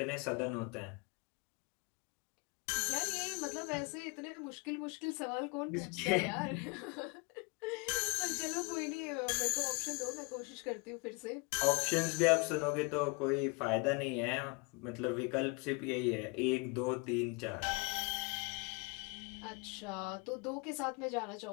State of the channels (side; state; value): right; quieter; 31.3 dB